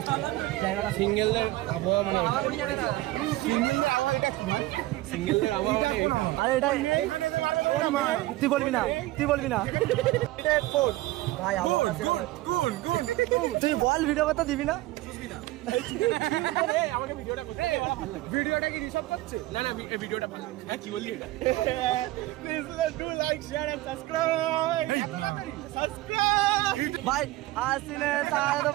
জায়গাটা। সিঙ্গেলদের আবহাওয়া মানে সিঙ্গেলদের আবহাওয়া মানে আরে এটা তুই বলবি না, তুই বলবি না ভাই আবহাওয়া তুই বল ভিডিও কথা দিবি না? আমাকে ভিডিওটা করতে দে, ভালো লাগে। ভিডিওটা কি রিসার্চ করছে? না না, ভিডিওটা ভালো। হ্যাঁ কি বললি এটা? Please do like share and subscribe. Subscribe ভাই আসিনে তার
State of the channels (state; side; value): quieter; left; 17.7 dB